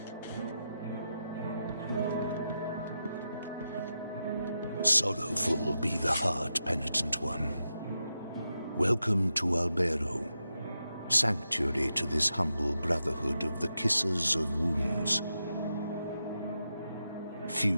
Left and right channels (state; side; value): inverted; both; correlation -0.87